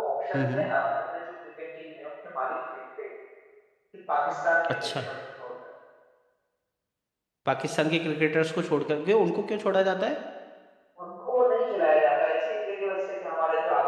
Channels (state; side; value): identical; both; correlation 1.00